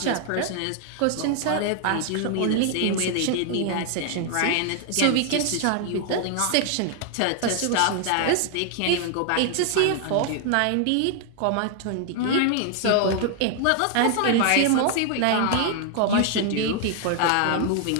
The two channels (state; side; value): different; both; correlation 0.00